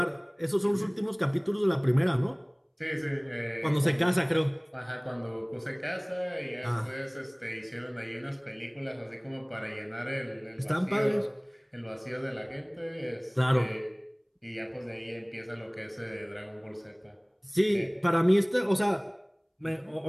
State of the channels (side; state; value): both; identical; correlation 1.00